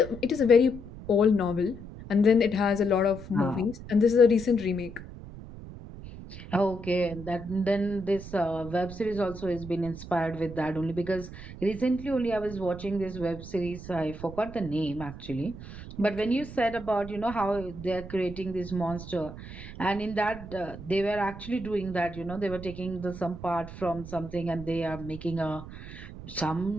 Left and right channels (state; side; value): noise; right; rumble, 13 dB below the sound